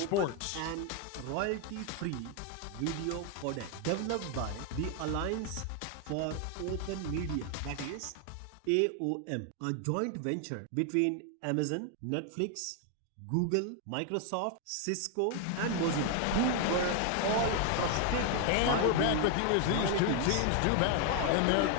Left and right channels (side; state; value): both; different; correlation 0.01